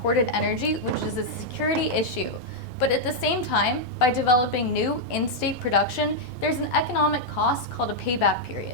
energy, which is a security issue. But at the same time, by developing new in-state production, there's an economic cost called a payback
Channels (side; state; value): both; normal; correlation -0.03